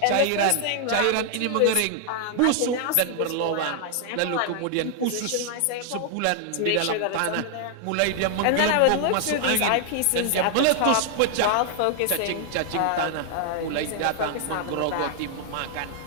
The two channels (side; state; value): both; different; correlation 0.00